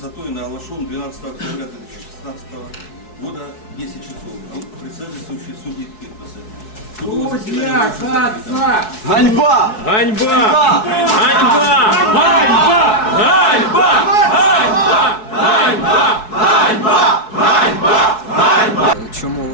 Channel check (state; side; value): late; right; 4.7 ms